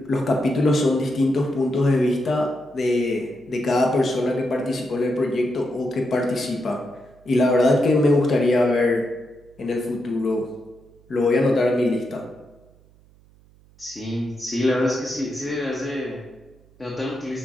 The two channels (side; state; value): right; noise; hum, 29 dB below the sound